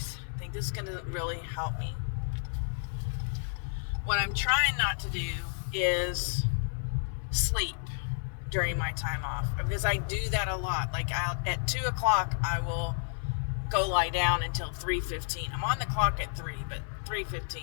I think this is going to really help me. What I'm trying not to do is sleep during my time off, because I do that a lot. Like at 2 o'clock, I will go lie down until 3:15. I'm on the clock at 3, but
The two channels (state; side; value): silent; right; 57 dB below the other